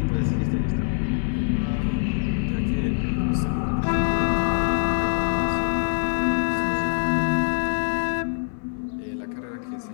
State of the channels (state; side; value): silent; right; 59 dB below the other